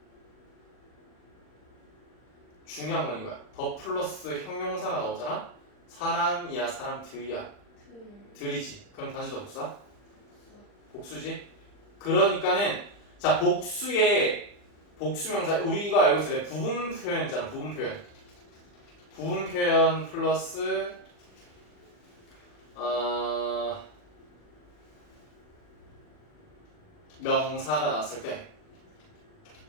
중요한 건 이거야. 더 플러스 형용사가 나오잖아. 사람이야, 사람들이야. 들이지. 그럼 단수다 복수다? 복수지. 그러니까는 자, 복수의 복수명사 우리가 알고 있을 때 부분 표현 있잖아. 부분 표현. 부분 표현 플러스 명사가 나왔을 때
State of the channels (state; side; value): late; right; 40 ms